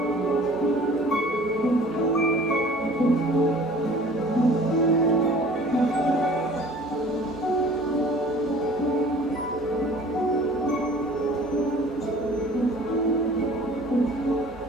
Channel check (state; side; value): normal; both; correlation 0.48